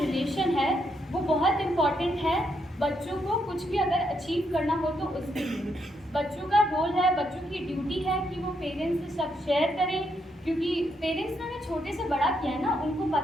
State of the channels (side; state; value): both; normal; correlation 0.78